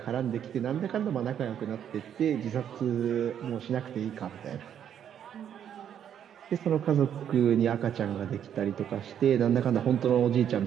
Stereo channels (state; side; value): quieter; left; 9.3 dB